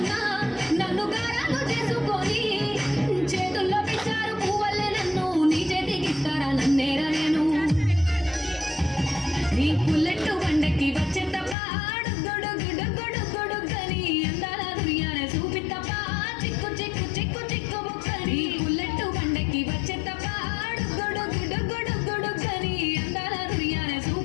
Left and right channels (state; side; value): drops out; right; at 11.6 s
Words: నన్ను గారాలు చేసుకొని చేతుల్లో పిచ్చారు పువ్వల్లే నన్ను నీ చేతికి ఇస్తారా నన్నేరా నేను నీ పుల్లెట్టు బండకి వచ్చే తప్ప గొడుగొడుగొడుగొడుగని అందాల దుర్యానే చూపి తప్ప చిక్కు చిక్కు చిక్కు చిక్కు బుక్కని పుల్లెట్టు బండకి వచ్చే తప్ప గొడుగొడుగొడుగొడుగని అందాల దుర్యానే